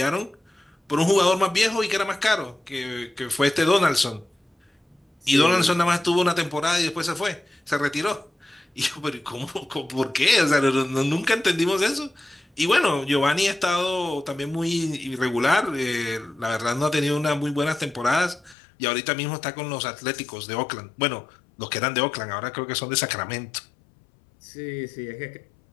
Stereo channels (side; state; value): right; drops out; at 18.6 s